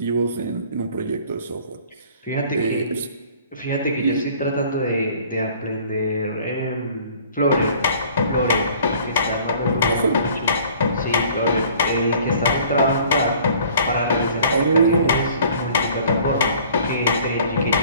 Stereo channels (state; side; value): inverted; both; correlation -0.52